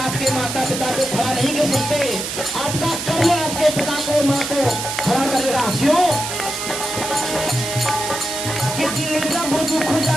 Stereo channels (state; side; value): noise; right; hiss, 5 dB below the sound